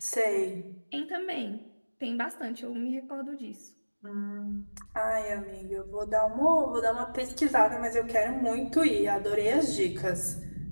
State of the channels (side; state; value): both; inverted; correlation -1.00